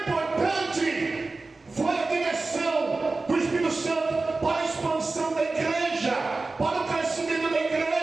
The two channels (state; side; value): quieter; left; 3.6 dB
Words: foi a direção do Espírito Santo para a expansão da igreja, para o crescimento da